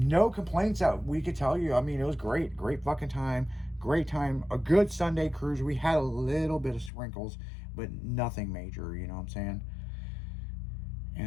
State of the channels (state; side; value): drops out; right; at 6.9 s